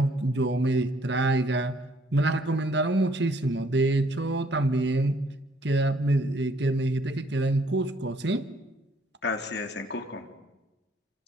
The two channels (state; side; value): normal; both; correlation 0.64